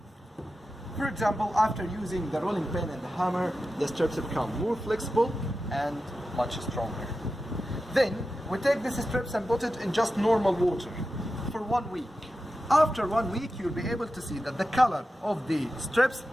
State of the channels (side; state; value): both; normal; correlation 0.92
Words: For example, after using the rolling pin and the hammer, the strips become more flexible and much stronger. Then we take these strips and put it in just normal water for 1 week. After 1 week, you'll be able to see that the color of the strips